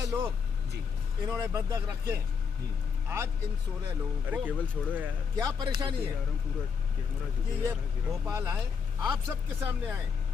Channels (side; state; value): right; quieter; 6.1 dB